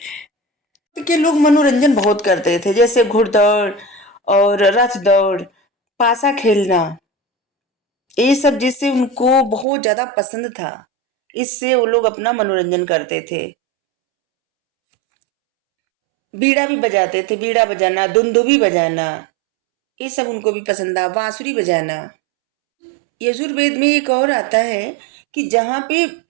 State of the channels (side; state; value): left; drops out; at 9.7 s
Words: के लोग मनोरंजन बहुत करते थे, जैसे घुड़दौड़ और रथ दौड़, पासा खेलना, ये सब जिससे उनको बहुत ज्यादा पसंद था, इससे वो लोग अपना मनोरंजन करते थे। बीड़ा भी बजाते थे, बीड़ा बजाना, दुंदुभी बजाना, ये सब उनको भी पसंद था, बांसुरी बजाना। यजुर्वेद में एक और आता है कि जहां पे